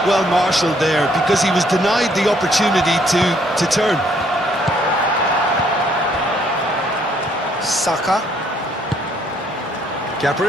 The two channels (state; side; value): normal; both; correlation 0.67